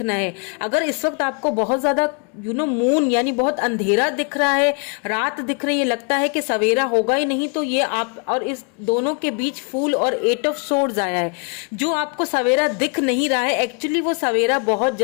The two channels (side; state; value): right; quieter; 36.1 dB